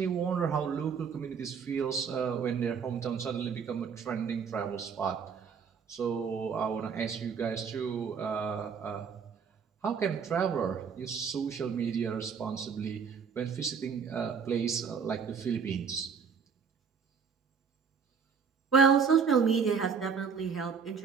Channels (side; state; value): left; quieter; 6.3 dB